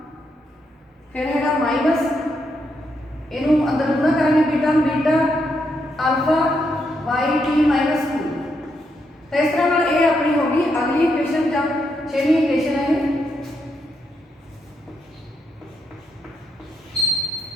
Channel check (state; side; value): normal; both; correlation 0.80